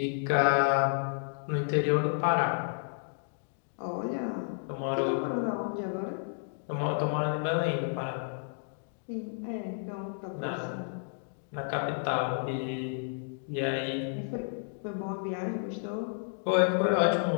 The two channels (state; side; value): silent; right; digital silence